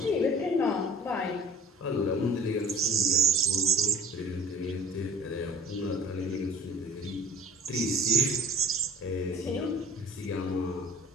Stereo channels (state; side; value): normal; both; correlation 0.47